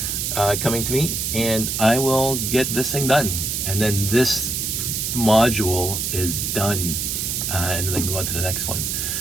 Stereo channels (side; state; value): right; noise; hiss, 1 dB below the sound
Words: coming to me, and I will get this thing done, and then this module is done, and then I can go on to the next one.